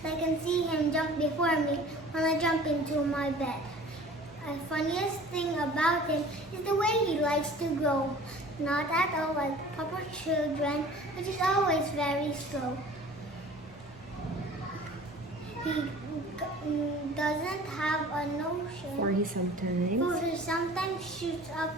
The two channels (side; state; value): both; normal; correlation 0.45